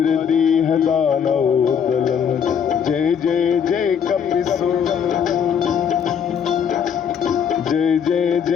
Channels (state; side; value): quieter; right; 7.7 dB